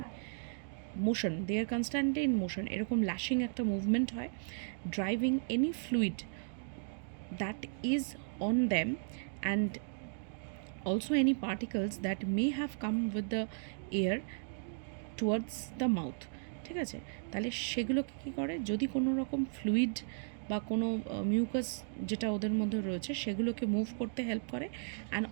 motion, they are constantly in motion, এরকম ল্যাশিং একটা মুভমেন্ট হয়, driving any fluid that is on them and also any particles that may have come with the air towards the mouth. ঠিক আছে, তাহলে সেগুলোকে কী করে, যদি কোনো রকম ফ্লুইড বা কোনো মিউকাস যেটা ওদের মধ্যে রয়েছে সেগুলোকে মুভ করতে হেল্প করে, অ্যান্ড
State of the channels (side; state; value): left; silent; digital silence